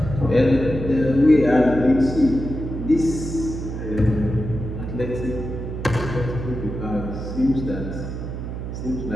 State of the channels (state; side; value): noise; right; hum, 6 dB below the sound